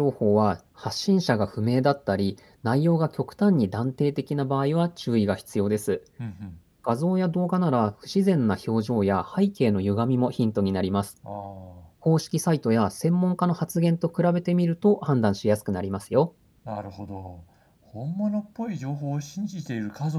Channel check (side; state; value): both; identical; correlation 1.00